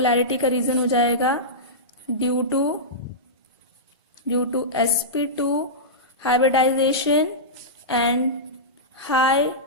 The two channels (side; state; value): both; normal; correlation -0.15